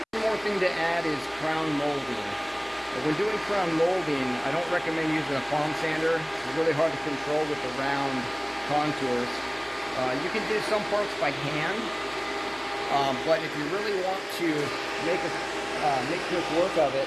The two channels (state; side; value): identical; both; correlation 1.00